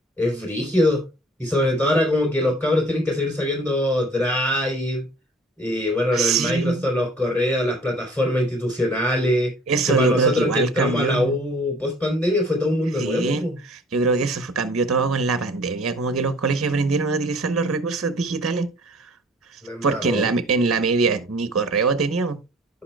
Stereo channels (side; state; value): both; normal; correlation 0.51